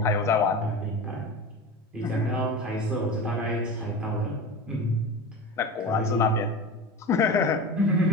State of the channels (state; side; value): normal; both; correlation 0.29